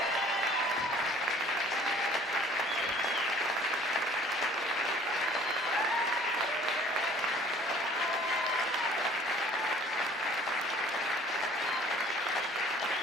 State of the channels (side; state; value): both; normal; correlation 0.52